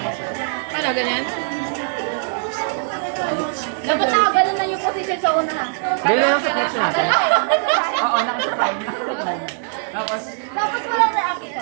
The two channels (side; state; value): left; silent; 65 dB below the other